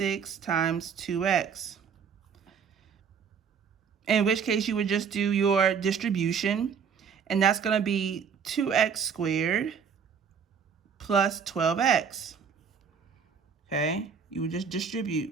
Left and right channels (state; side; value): quieter; left; 6.7 dB